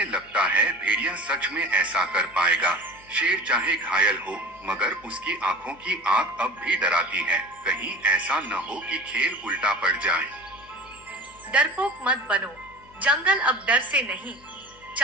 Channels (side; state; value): left; noise; hum, 27 dB below the sound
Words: लगता है भेड़िया सच में ऐसा कर पाएगा? शेर चाहे घायल हो, मगर उसकी आंखों की आग अब भी डराती है। कहीं ऐसा न हो कि खेल उल्टा पड़ जाए। डरपोक मत बनो। जंगल अब डर से नहीं,